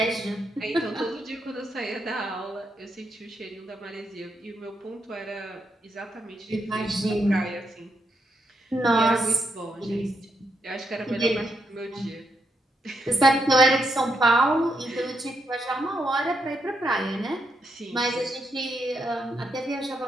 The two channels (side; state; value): both; normal; correlation 0.80